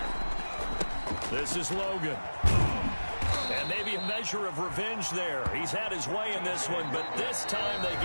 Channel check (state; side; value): inverted; both; correlation -1.00